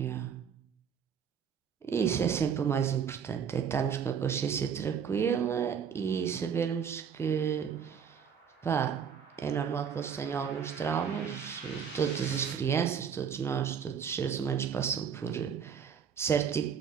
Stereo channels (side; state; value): left; quieter; 7.4 dB